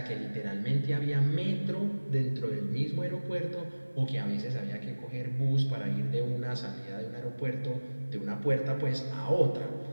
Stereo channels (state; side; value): inverted; both; correlation -1.00